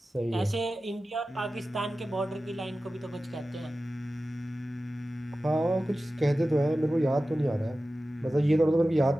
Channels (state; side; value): normal; both; correlation 0.95